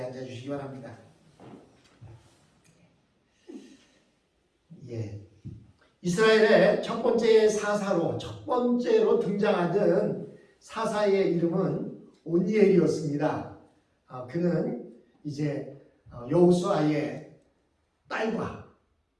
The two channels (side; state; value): both; identical; correlation 1.00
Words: 앉아주시기 바랍니다. 예. 이스라엘의 첫 번째로 등장하던 사사의 이름은 온니엘이었습니다. 그는 이제 여호수아의 딸과